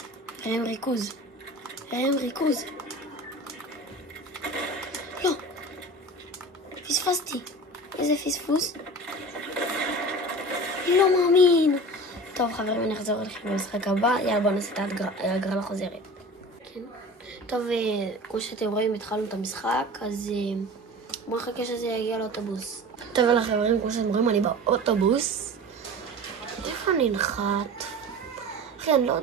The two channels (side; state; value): both; normal; correlation 0.36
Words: רעם ריכוז. לא. פספסתי. איזה פספוס. לא מאמין. טוב, חברים, אני אחזור אליכם במשחק הבא. יאללה, בואו נעשה את ההגרלה חוזרת. כן. טוב, כמו שאתם רואים, התחלנו את המשחק, אז בואו נחכה שזה יגיע לאוטובוס. טוב, יאללה, חברים, כמו שאתם רואים, אני באוטובוס. איפה אני נחת? אחי, אני לא